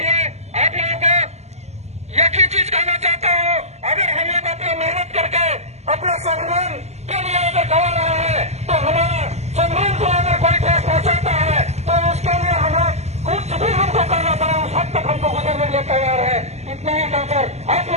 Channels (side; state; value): left; late; 0.32 ms